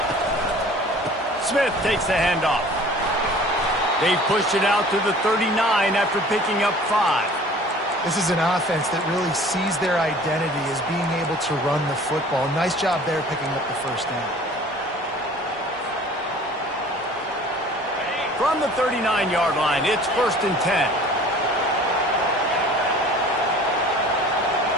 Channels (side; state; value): both; normal; correlation 0.47